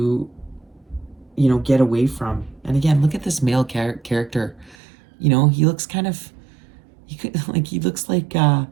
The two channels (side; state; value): left; drops out; at 4.8 s